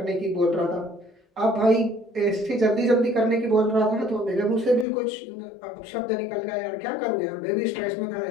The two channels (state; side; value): drops out; right; at 4.9 s